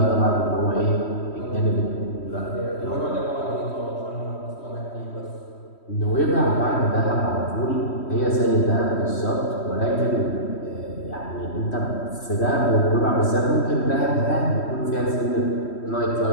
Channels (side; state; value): right; late; 3.1 ms